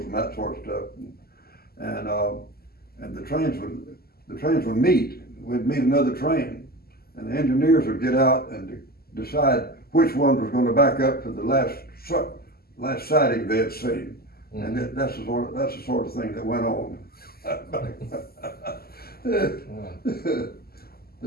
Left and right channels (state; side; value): late; right; 0.45 ms